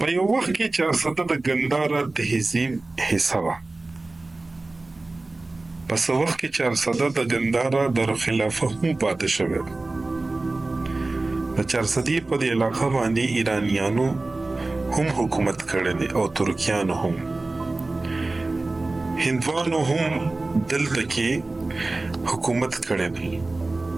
یو وخت کې چارسده د ګندهارا تهذیب حصه وه. په څه وخت کې چارسده د ګندهارا دارالخلافه هم پاتې شوې ده. د چارسدې په دې علاقه باندې ایرانیانو هم حکومت کړی دی او ترکیانو هم. هندوانو هم دلته کې حکومت کړی دی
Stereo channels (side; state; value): left; quieter; 3.2 dB